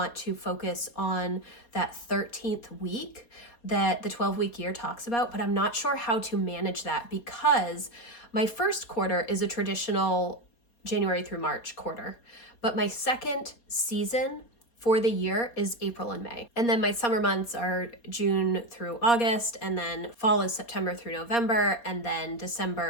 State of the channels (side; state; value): right; late; 4.2 ms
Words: to focus on that 13th week that the 12-week year talks about, but I'm not sure how to manage that because my first quarter is a traditional January through March quarter, but my second season for the year is April and May. And then my summer months are June through August, and then fall is September through November, and then